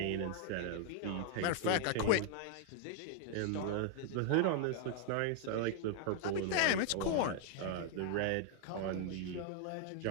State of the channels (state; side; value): different; both; correlation 0.00